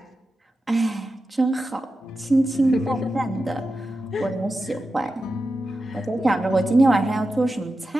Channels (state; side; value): normal; both; correlation 0.91